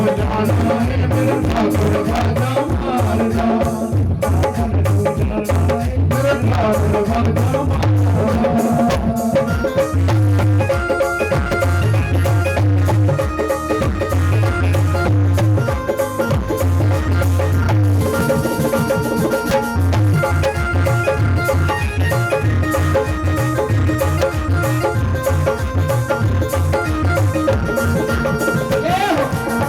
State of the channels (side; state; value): both; identical; correlation 1.00